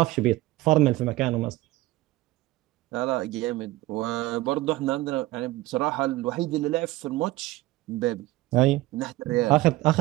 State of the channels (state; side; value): quieter; left; 18.1 dB